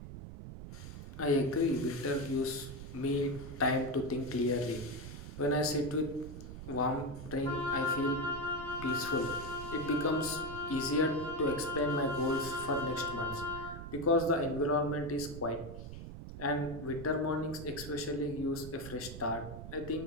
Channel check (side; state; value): right; noise; rumble, 11 dB below the sound